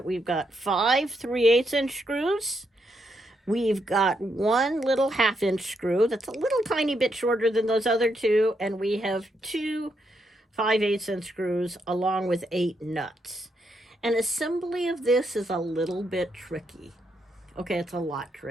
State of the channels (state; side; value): normal; both; correlation 0.79